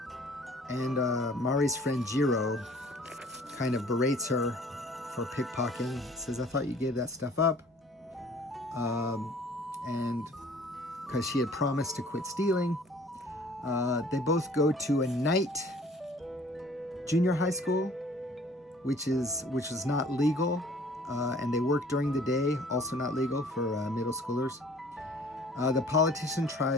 and Mari's friend Jiro kind of berates her for pickpocketing. Says, I thought you gave that stuff up. And because she had promised to quit stealing. They both go to a night junior high school, which was not legal, and they work during the day, also not legal for middle schoolers. The politician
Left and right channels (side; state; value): both; normal; correlation 0.53